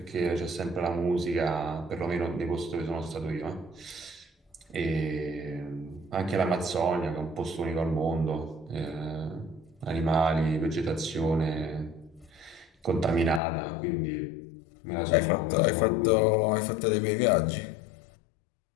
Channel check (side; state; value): right; drops out; at 13.4 s